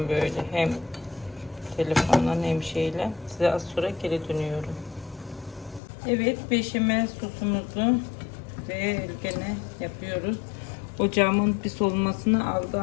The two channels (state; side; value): drops out; right; at 5.8 s